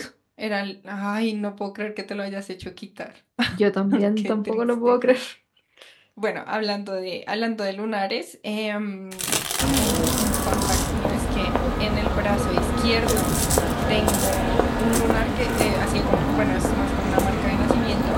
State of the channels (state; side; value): identical; both; correlation 1.00